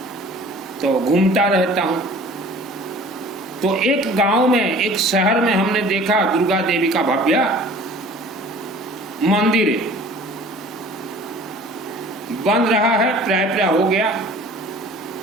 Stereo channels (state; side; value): normal; both; correlation 0.47